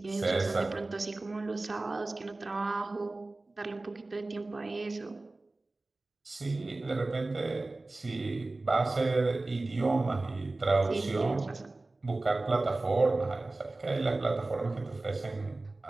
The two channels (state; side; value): quieter; left; 3.1 dB